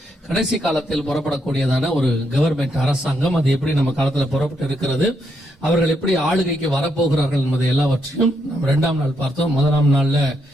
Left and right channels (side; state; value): both; normal; correlation 0.78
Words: கடைசி காலத்தில் புறப்படக்கூடியதான ஒரு கவர்மெண்ட் அரசாங்கம், அது எப்படி நம்ம காலத்துல புறப்பட்டு இருக்கிறது, அவர்கள் எப்படி ஆளுகைக்கு வரப்போகிறார்கள் என்பதை எல்லாவற்றையும் நம்ம 2ஆம் நாள் பார்த்தோம். முதலாம் நாள்ல